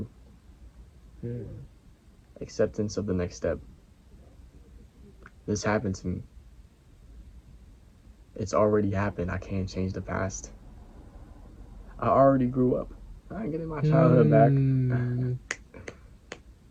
Mm. Acceptance of the next step. This happened to me. It's already happened. I can't change the past. I already grew up. I ain't getting my childhood back.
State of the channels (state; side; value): identical; both; correlation 1.00